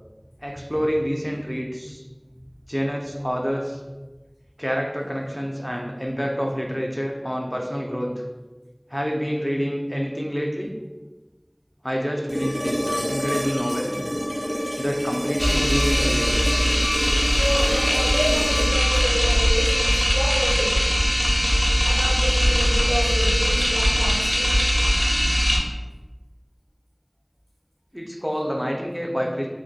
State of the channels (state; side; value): identical; both; correlation 1.00